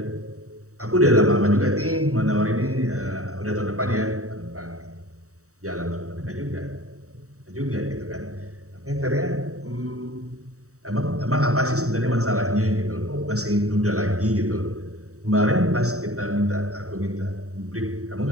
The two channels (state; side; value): late; left; 0.65 ms